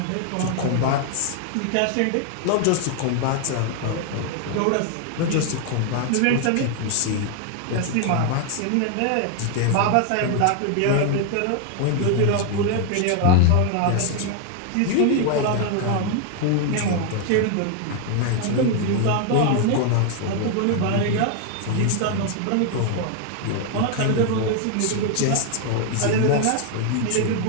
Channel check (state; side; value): different; both; correlation 0.00